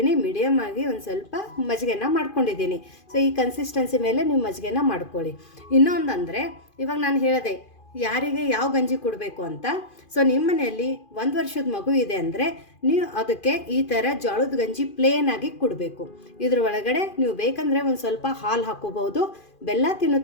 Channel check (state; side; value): late; right; 2.4 ms